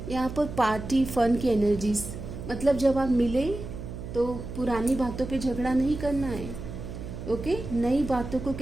यहाँ पर पार्टी फन की एनर्जीज, मतलब जब आप मिले तो पुरानी बातों पे झगड़ा नहीं करना है। ओके, नई बातों को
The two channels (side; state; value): right; noise; hum, 9 dB below the sound